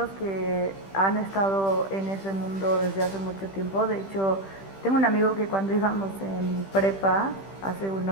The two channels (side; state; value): right; late; 15 ms